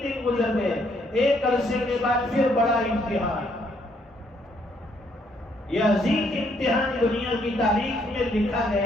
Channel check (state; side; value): normal; both; correlation 0.70